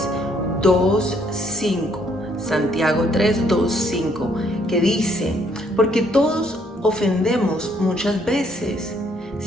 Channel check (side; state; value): both; normal; correlation 0.68